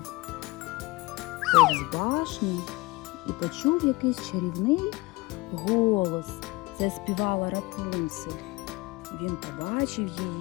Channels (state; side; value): quieter; right; 22.6 dB